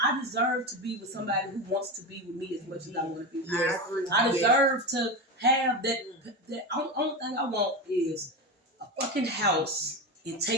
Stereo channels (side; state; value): both; normal; correlation 0.19